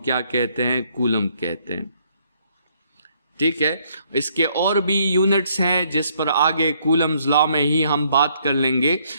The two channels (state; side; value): inverted; both; correlation -0.69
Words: कहते हैं, कूलम कहते हैं। ठीक है, इसके और भी यूनिट्स हैं जिस पर आगे कूलम्स लॉ में ही हम बात कर लेंगे,